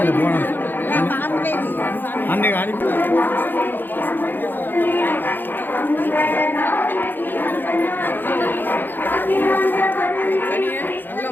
போனோம் அன்னைக்கு அனுப்பி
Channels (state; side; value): late; right; 0.093 ms